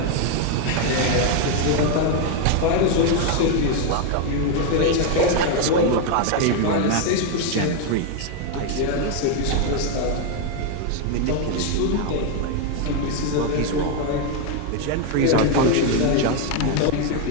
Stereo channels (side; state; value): both; different; correlation 0.01